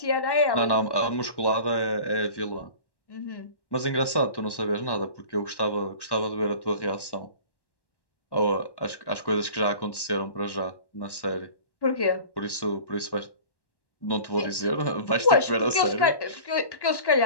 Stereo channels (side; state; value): right; late; 1.1 ms